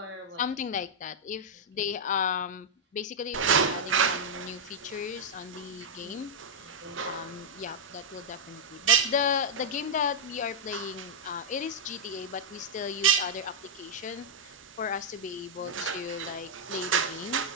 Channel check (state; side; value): normal; both; correlation -0.05